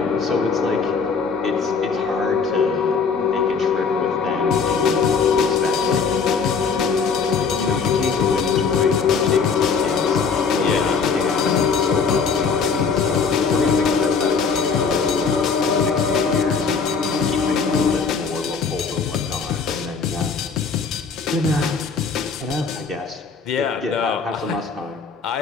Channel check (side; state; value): right; quieter; 5.4 dB